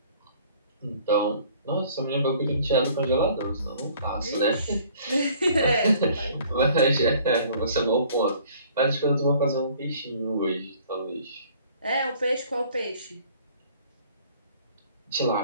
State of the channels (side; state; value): both; inverted; correlation -0.55